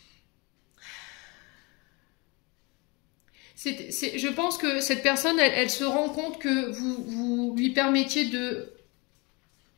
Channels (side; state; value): right; quieter; 27.9 dB